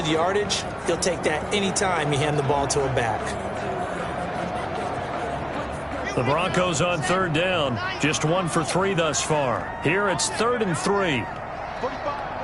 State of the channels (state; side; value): identical; both; correlation 1.00